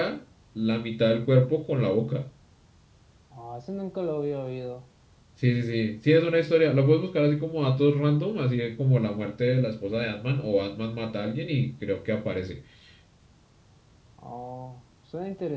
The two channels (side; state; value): both; identical; correlation 1.00